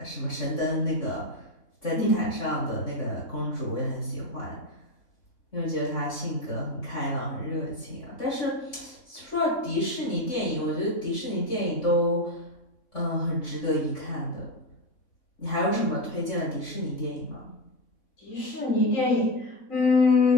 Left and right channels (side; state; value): right; late; 3.6 ms